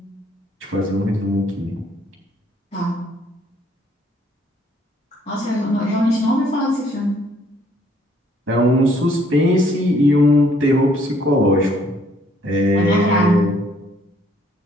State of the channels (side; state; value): both; normal; correlation 0.64